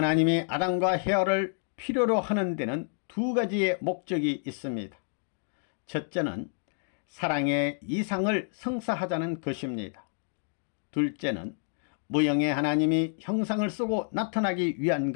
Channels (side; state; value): right; silent; 59 dB below the other